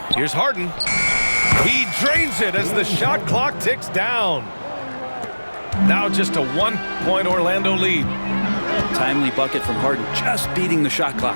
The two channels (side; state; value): both; inverted; correlation -1.00